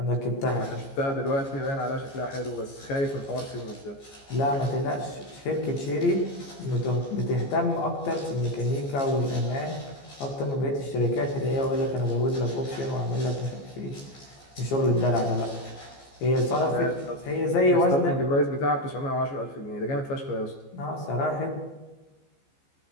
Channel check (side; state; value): right; late; 15 ms